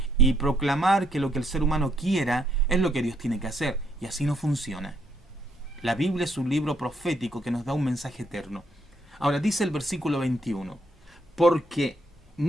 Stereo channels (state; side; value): normal; both; correlation 0.72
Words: y proclamar que lo que el ser humano quiera es lo que Dios tiene que hacer. Y así no funciona. La Biblia es un libro profético que nos da un mensaje eterno. Ahora dice el versículo 21, porque